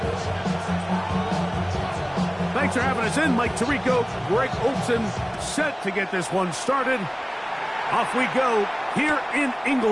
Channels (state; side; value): identical; both; correlation 1.00